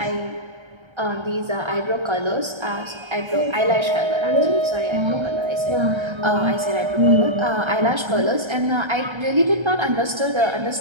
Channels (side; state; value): left; late; 1.3 ms